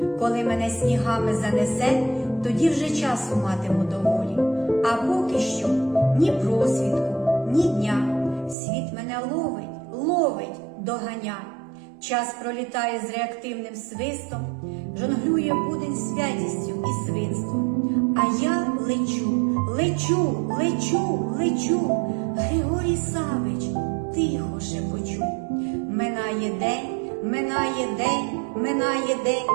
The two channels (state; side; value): drops out; left; at 8.6 s